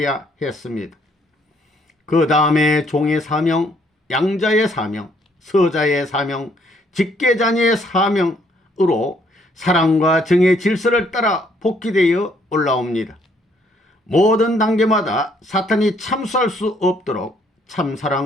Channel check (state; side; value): normal; both; correlation 0.67